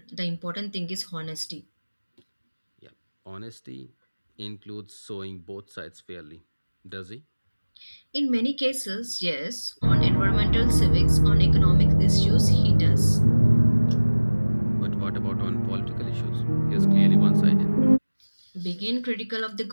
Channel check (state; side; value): inverted; both; correlation -1.00